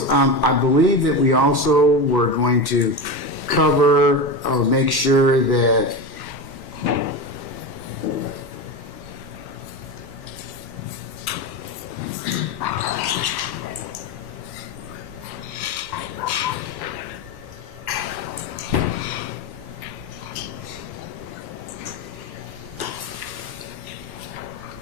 I believe that we also were going to cover or make sure that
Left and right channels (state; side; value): late; right; 1.1 ms